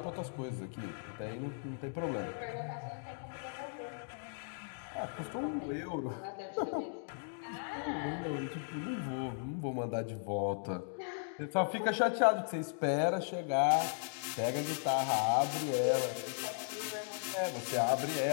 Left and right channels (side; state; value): right; silent; digital silence